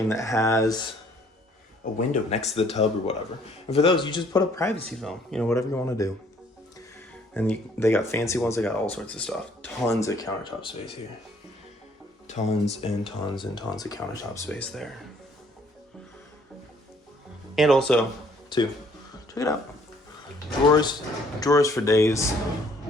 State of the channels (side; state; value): both; normal; correlation 0.62